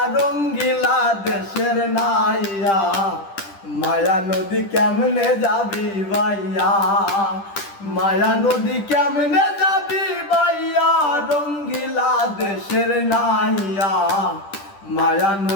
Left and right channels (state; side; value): late; right; 10 ms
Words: রঙ্গিলা দেশের নাইয়া। মায়া নদী কেমনে যাবি ভাইয়া, মায়া নদী কেমনে যাবি ভাইয়া রঙ্গিলা দেশের নাইয়া। মায়া